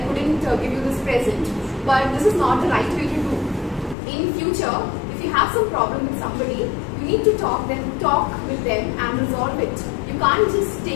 couldn't give you this present, but this is not the right way to do. In future, if you have some problem with somebody, you need to talk with them and resolve it. You can't just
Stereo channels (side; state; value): right; drops out; at 4.0 s